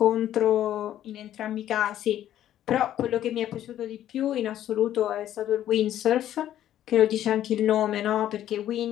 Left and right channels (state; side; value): quieter; right; 11.9 dB